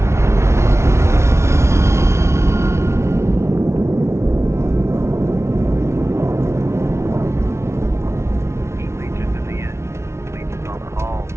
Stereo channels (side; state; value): left; late; 0.13 ms